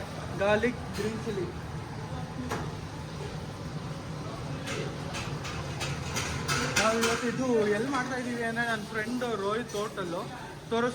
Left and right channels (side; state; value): both; identical; correlation 1.00